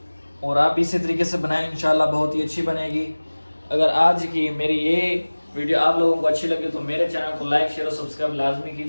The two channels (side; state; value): both; inverted; correlation -1.00